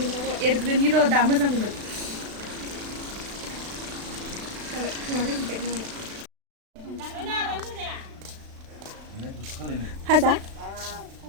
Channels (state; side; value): late; left; 36 ms